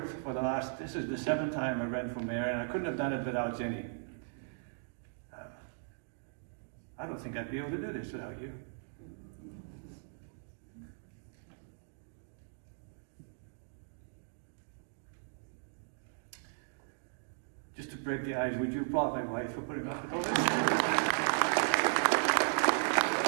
for the last, this is the 7th time I ran for mayor, and I couldn't have done it without Jenny. I don't think I'd be able to do this without you. Just to break the ice, would you applaud my wife for putting up with all this?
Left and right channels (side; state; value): left; silent; digital silence